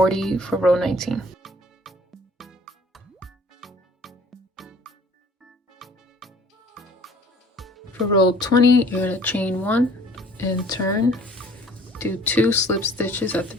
for row 19. For row 20, you're going to chain 1 and turn, do 2 slip stitches at the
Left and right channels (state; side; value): normal; both; correlation 0.52